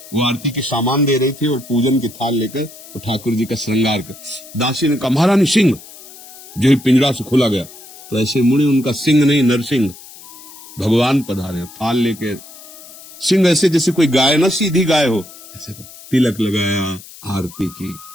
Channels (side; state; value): left; noise; hiss, 18 dB below the sound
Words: वो आरती के सामान दे रही थी और पूजन की थाल लेकर तो ठाकुर जी का श्रृंगार कर। दासी ने कहा, महारानी सिंह। जो ही पिंजरा से खुला गया तो ऐसे मुड़े, उनका सिंह नहीं नरसिंह, भगवान पधारे, थाल लेके। सिंह ऐसे जैसे कोई गाय ना, सीधी गाय हो, ऐसे तिलक लगाया, आरती की।